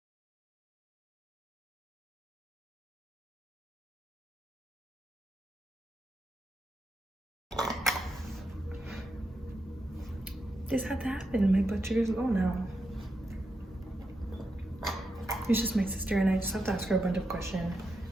This had to happen. My blood sugar's low now. It's just my sister, and I just have to ask her a bunch of questions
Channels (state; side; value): normal; both; correlation 0.85